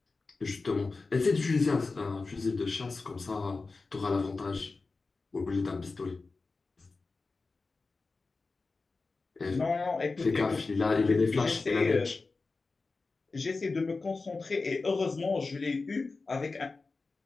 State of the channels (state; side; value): quieter; right; 3.9 dB